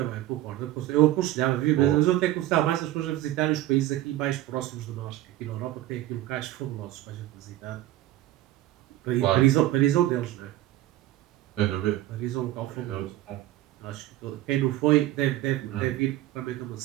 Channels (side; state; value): left; quieter; 14.7 dB